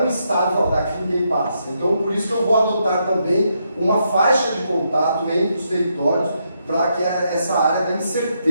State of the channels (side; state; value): both; inverted; correlation -0.79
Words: um estado daqui ninguém passa. Então por isso que eu vou adotar também uma faixa de contato entre os territórios para que essa área da